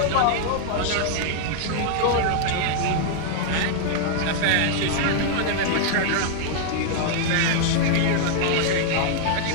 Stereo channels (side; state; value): both; different; correlation -0.01